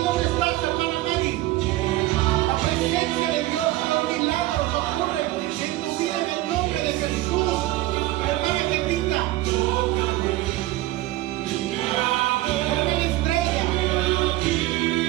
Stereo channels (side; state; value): left; quieter; 17.1 dB